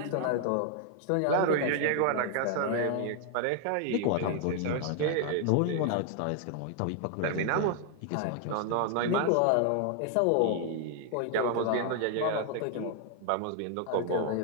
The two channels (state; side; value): different; both; correlation 0.00